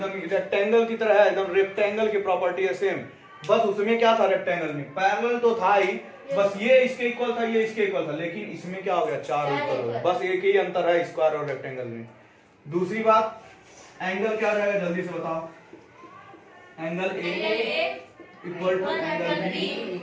रेक्टेंगल की तरह है, एकदम रेक्टेंगल की प्रॉपर्टी है सेम। बस उसमें क्या था, रेक्टेंगल में पैरेलल तो था ही, बस ये इसके इक्वल था, ये इसके इक्वल था, लेकिन इसमें क्या हो गया, चारों इक्वल हो गए। बस एक ही अंतर है स्क्वायर और रेक्टेंगल में। दूसरी बात, एंगल क्या रहेगा, जल्दी से बताओ। Angle A equal to angle B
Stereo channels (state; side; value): identical; both; correlation 1.00